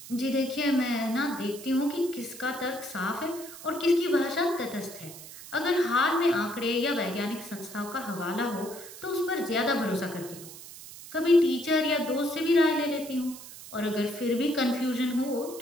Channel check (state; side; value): noise; right; hiss, 15 dB below the sound